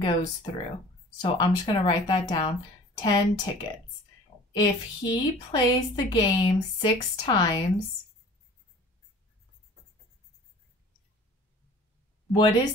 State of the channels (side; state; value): both; normal; correlation 0.46